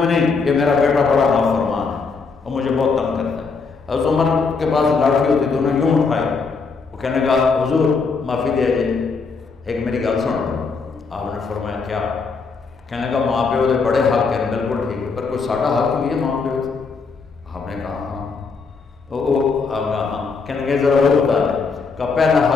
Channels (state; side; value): quieter; right; 4.8 dB